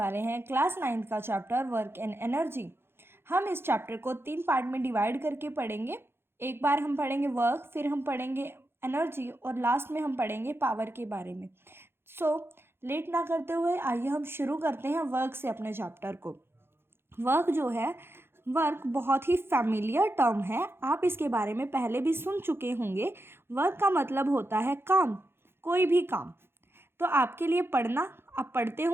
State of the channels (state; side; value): late; left; 0.11 ms